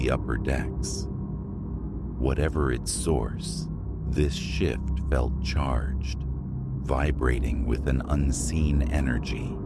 upper decks. Whatever its source, this shift felt charged, vibrating with an unseen energy.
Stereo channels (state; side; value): identical; both; correlation 1.00